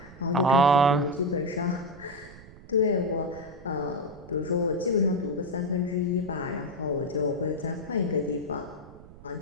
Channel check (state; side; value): noise; right; rumble, 19 dB below the sound